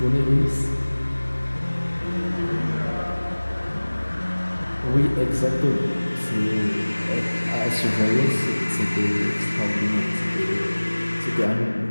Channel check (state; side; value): inverted; both; correlation -1.00